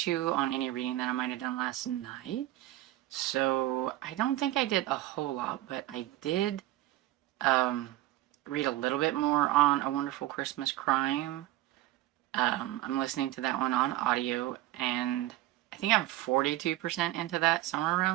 you on any reading that I might have done last night. So I don't think I did a whole lot, but I did read a little bit more on A Wonderful Christmas Crime. I'm listening to that one on audio, and I think I'm 42% into that, somewhere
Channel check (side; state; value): left; quieter; 15.7 dB